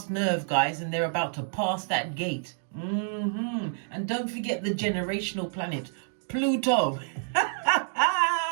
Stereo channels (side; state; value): left; silent; digital silence